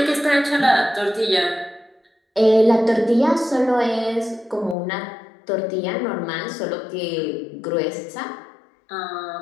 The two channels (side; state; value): right; drops out; at 4.8 s